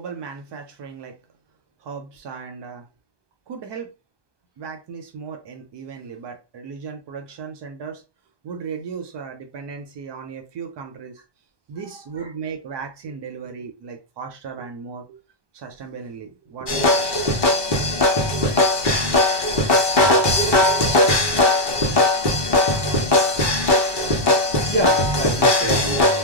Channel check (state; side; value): late; left; 1.2 ms